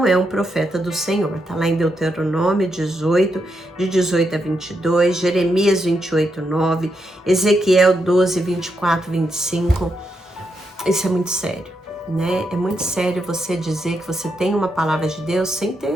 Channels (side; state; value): both; normal; correlation 0.82